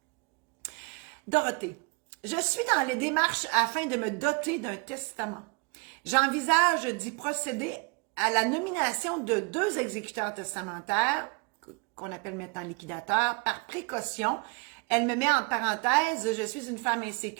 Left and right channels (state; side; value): quieter; left; 32.0 dB